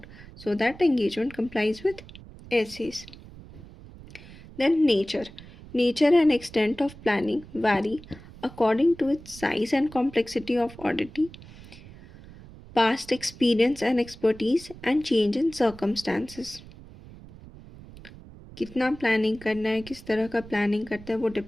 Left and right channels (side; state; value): right; noise; rumble, 18 dB below the sound